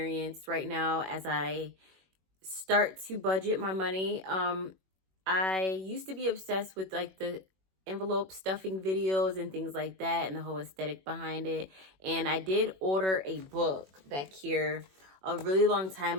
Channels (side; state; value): left; late; 21 ms